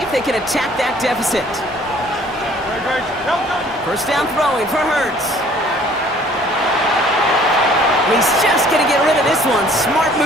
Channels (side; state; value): both; normal; correlation 0.55